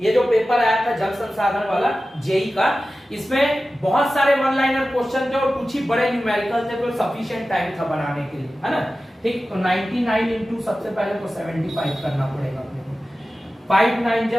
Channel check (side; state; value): both; normal; correlation 0.95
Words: ये जो पेपर आया था जल संसाधन वाला जेई का, इसमें बहुत सारे वन लाइनर क्वेश्चन थे और कुछ ही बड़े न्यूमेरिकल थे, तो सफिशिएंट टाइम था बनाने के लिए, है ना, ठीक। तो 99 इंटू सबसे पहले तो 75 करना पड़ेगा अपने को, 5 9